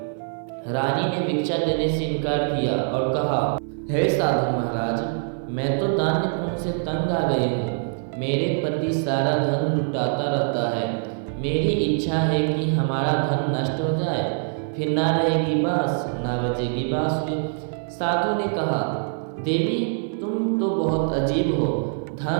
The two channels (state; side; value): silent; left; 55 dB below the other